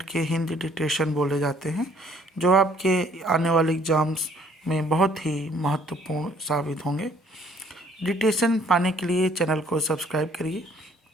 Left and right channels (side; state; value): both; normal; correlation 0.61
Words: के हिंदी डिक्टेशन बोले जाते हैं, जो आपके आने वाले एग्जाम्स में बहुत ही महत्वपूर्ण साबित होंगे। डिक्टेशन पाने के लिए चैनल को सब्सक्राइब करिए